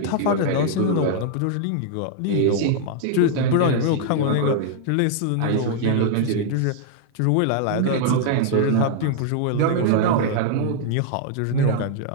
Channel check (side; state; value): both; different; correlation 0.00